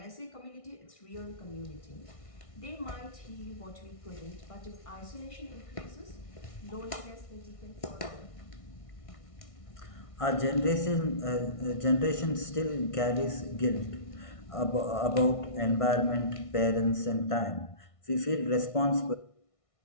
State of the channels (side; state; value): right; late; 1.6 ms